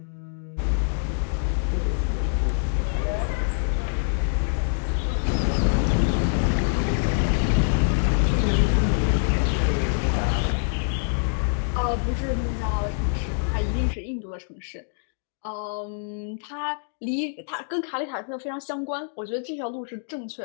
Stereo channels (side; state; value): right; silent; digital silence